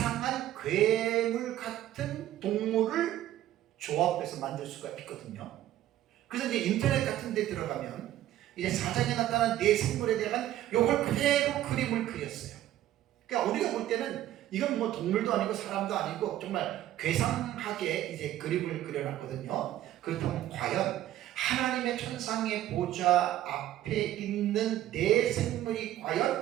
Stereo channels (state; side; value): quieter; left; 13.2 dB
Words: 괴물 같은 동물을 조합해서 만들 수가 있거든요. 그래서 이제 인터넷 같은 데 들어가면 이제 사장에 나타난 네 생물에 대한 요걸 그대로 그림을 그렸어요. 그러니까 우리가 볼 때는 이건 뭐 동물도 아니고 사람도 아니고 정말 괴상하게 이제 그림을 그려놨거든요. 그렇다면 과연 하나님의 천상의 보좌 앞에 있는 네 생물이